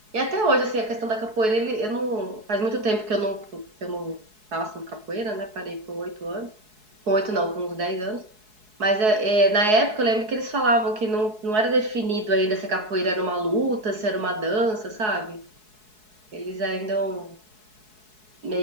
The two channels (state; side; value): late; left; 4.7 ms